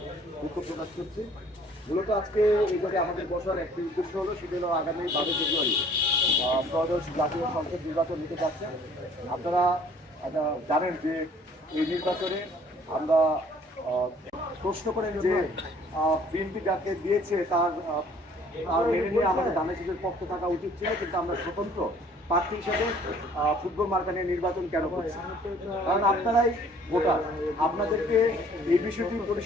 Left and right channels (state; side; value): normal; both; correlation 0.56